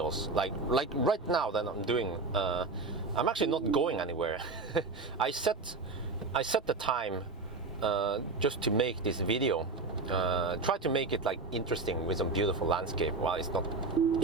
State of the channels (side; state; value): left; quieter; 3.8 dB